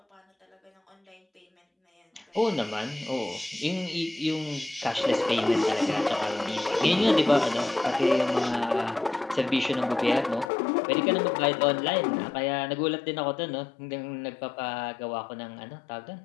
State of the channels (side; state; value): right; drops out; at 10.5 s